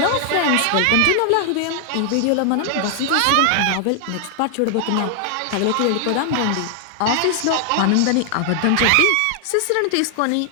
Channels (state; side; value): different; both; correlation 0.00